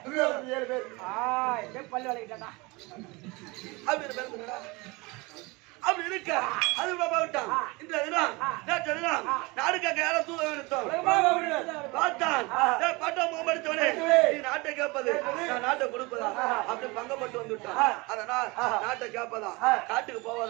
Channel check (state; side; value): quieter; left; 25.3 dB